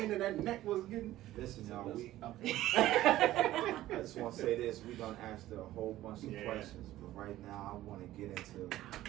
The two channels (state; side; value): quieter; left; 14.8 dB